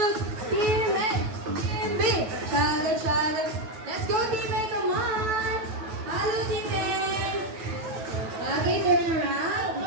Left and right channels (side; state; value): left; late; 9.3 ms